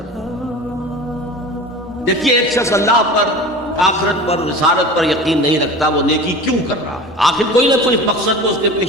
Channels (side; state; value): both; normal; correlation 0.35